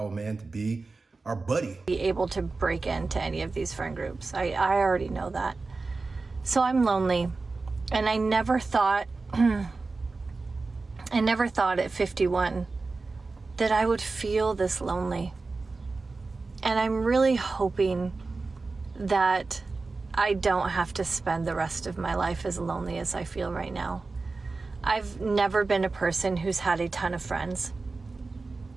a man to be our buddy. Be able to break into any of these friend groups. I already know that. So I'm lonely. And I never thought at 51 that I would feel this lonely. And I'm really hoping that I don't have to spend the rest of my life as lonely as I feel right now. I've never been a person who's had a ton of friends,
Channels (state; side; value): quieter; left; 3.8 dB